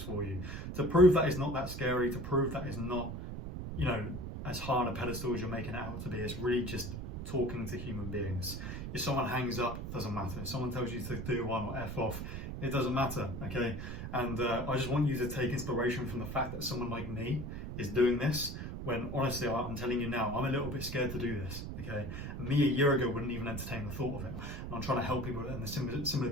for you to prove that it's not that scary, to prove that it's not, you know, as high on a pedestal as you're making it out to be. It's really just talking to human beings. If someone hangs up, doesn't matter. If someone tells you to do one or F off, it doesn't matter, okay? And I just want you to take inspiration from the fact that someone like me is doing this, when honestly, I'm telling you now, I'm a little bit scared to do this, okay? And me a year ago wouldn't even entertain the thought of it. And I'm trying to help people in a similar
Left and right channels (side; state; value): right; noise; rumble, 6 dB below the sound